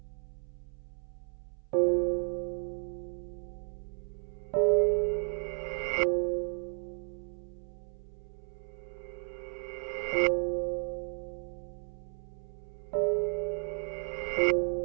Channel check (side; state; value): left; silent; 55 dB below the other